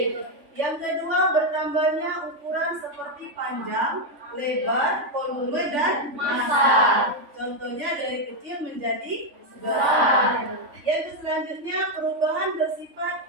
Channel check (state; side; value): late; left; 3.5 ms